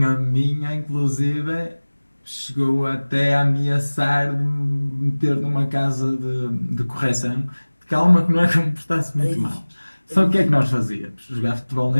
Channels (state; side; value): inverted; both; correlation -1.00